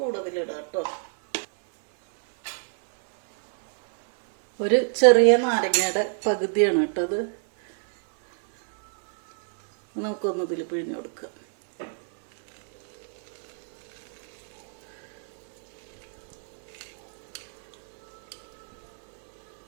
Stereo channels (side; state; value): left; silent; 61 dB below the other